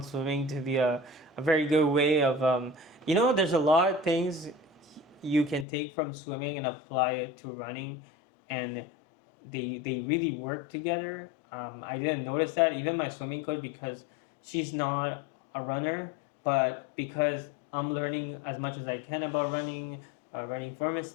swimming to be a very good way of, there's a lot of things you can take from swimming and apply it to running, and they really work together. I didn't notice that. Even my swimming coach, because she's not a runner, but because I'm learning as much as I can about running, running form and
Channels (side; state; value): right; drops out; at 5.7 s